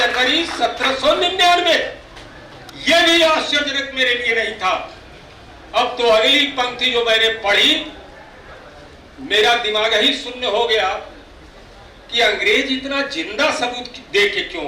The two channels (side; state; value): both; identical; correlation 1.00